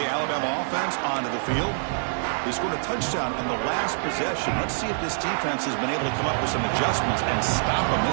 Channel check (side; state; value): left; silent; digital silence